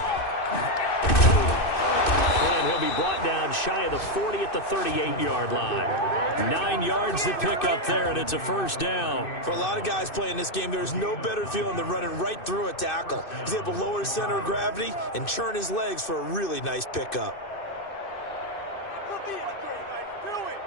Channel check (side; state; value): right; late; 2.6 ms